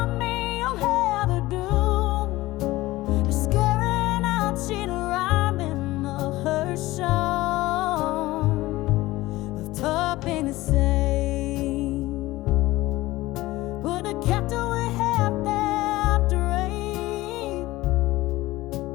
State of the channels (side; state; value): right; quieter; 18.3 dB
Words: me, you'll have a doom. Scaring out, she'd rhyme in of her song. Of topping the same. Would have kept away half that dream.